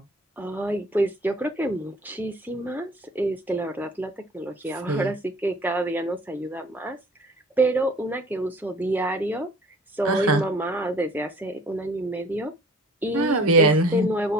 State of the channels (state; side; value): normal; both; correlation 0.48